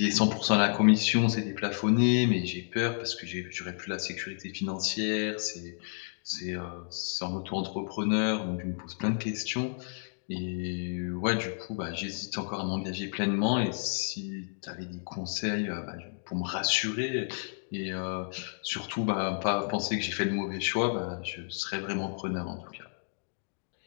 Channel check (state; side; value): silent; right; digital silence